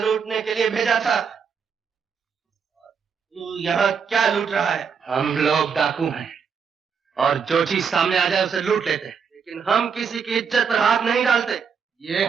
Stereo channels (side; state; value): left; quieter; 6.4 dB